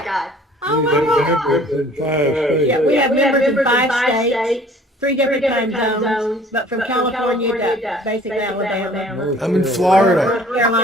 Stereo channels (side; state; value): both; normal; correlation 0.52